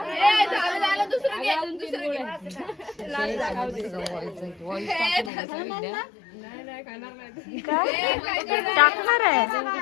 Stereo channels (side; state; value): right; drops out; at 5.3 s